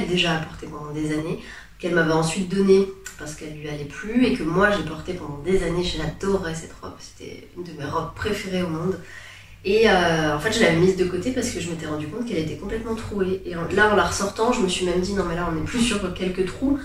déjà a portée pendant des années, qu'elle m'avait ensuite donnée parce qu'elle lui allait plus et que moi j'ai portée pendant des années. J'adorais cette robe, c'était une de mes robes préférées au monde. Et en fait, je l'avais mise de côté parce que je m'étais rendu compte qu'elle était complètement trouée. Et là, en la ressortant, je me suis même dit non, mais là, on n'est plus sur quelques trous,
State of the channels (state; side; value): identical; both; correlation 1.00